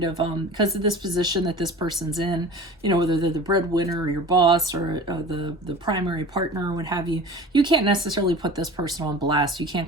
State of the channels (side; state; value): both; normal; correlation 0.38